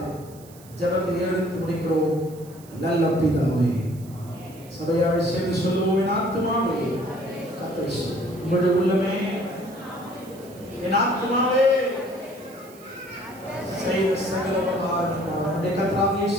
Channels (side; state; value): right; noise; hiss, 23 dB below the sound